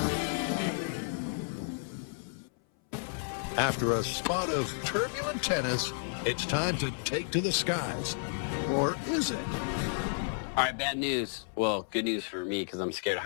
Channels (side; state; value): right; silent; 57 dB below the other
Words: After a spot of turbulent tennis, it's time to take to the skies. Or is it? All right, bad news. Well, good news for me because I'm scared of